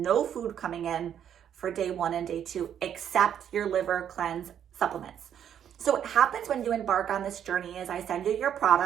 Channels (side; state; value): left; quieter; 9.3 dB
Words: food coming in for day 1 and day 2, except your liver cleanse supplements. So what happens when you embark on this journey is I send you your